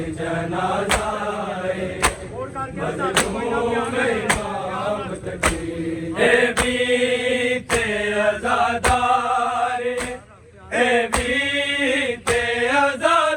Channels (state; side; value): identical; both; correlation 1.00